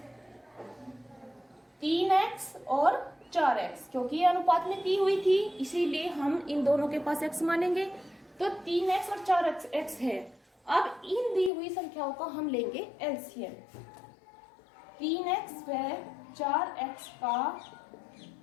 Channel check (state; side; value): drops out; right; at 11.5 s